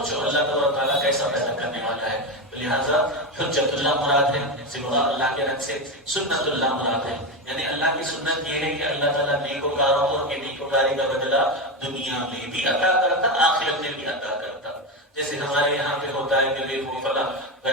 اللہ تعالیٰ کیسا پیدا کرنے والا ہے، لہٰذا حجت اللہ مراد ہے، سوا اللہ کے رنگ سے سنت اللہ مراد ہے، یعنی اللہ کی سنت یہ ہے کہ اللہ تعالیٰ نیکوکاروں کو کہ نیکوکاری کا بدلہ دنیا میں بھی عطا کرتا، آخرت میں بھی عطا کرتا، جیسے ہمارے یہاں پہ ہوتا ہے کہ وہ فلاں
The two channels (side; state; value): both; normal; correlation 0.15